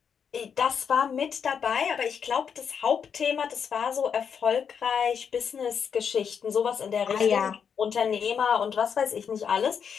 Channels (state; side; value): quieter; right; 7.1 dB